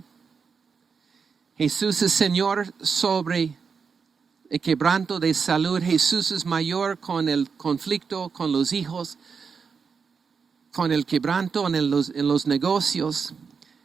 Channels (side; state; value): left; quieter; 5.7 dB